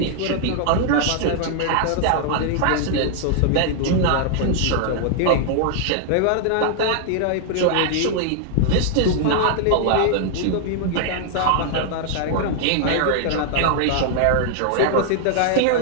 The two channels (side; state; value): both; different; correlation 0.00